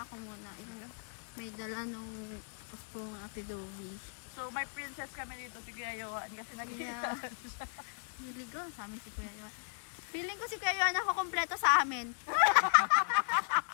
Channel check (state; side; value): silent; right; digital silence